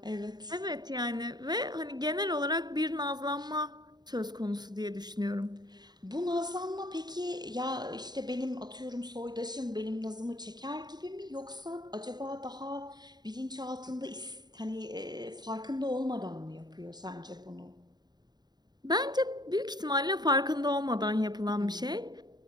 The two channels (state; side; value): late; left; 0.20 ms